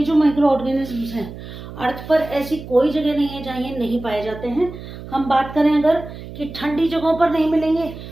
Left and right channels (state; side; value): noise; right; hum, 13 dB below the sound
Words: जो माइक्रो ऑर्गेनिजम्स हैं अर्थ पर ऐसी कोई जगह नहीं है जहाँ ये नहीं पाए जाते हैं। हम बात करें अगर कि ठंडी जगहों पर नहीं मिलेंगे